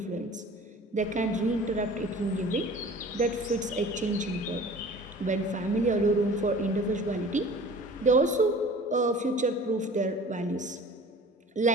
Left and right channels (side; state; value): both; normal; correlation 0.44